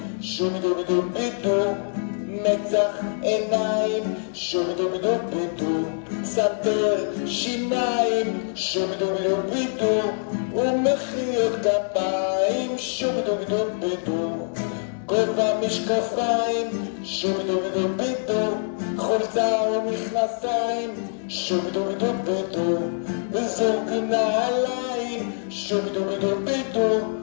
שובי דובי דובי דו, מצח עיניים, שובי דובי דובי דו, סנטר שיניים, שובי דובי דובי דו, ומחיאות כפיים, שובי דובי דובי דו, גובה משקפיים, שובי דובי דובי דו, חולצה ומכנסיים, שובי דובי דובי דו, וזוג נעליים, שובי דובי דובי דו,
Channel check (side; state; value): right; silent; digital silence